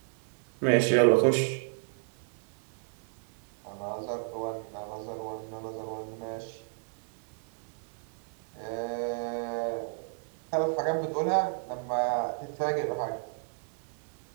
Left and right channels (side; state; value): left; silent; 56 dB below the other